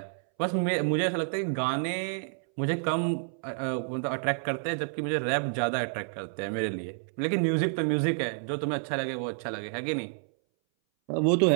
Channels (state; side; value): silent; left; 58 dB below the other